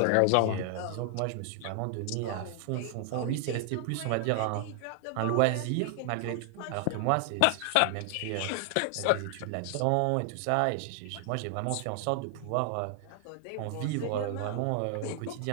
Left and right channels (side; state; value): both; different; correlation 0.00